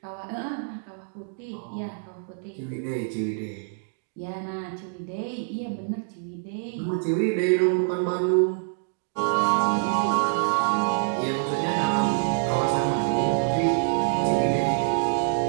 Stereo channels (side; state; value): left; silent; digital silence